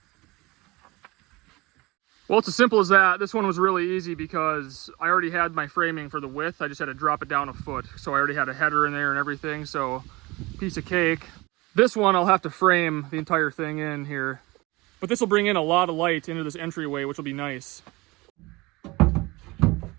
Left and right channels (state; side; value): quieter; left; 22.6 dB